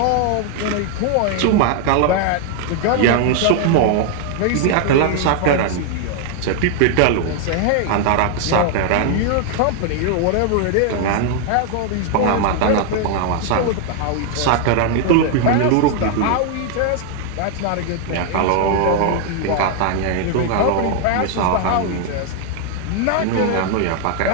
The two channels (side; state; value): both; different; correlation 0.00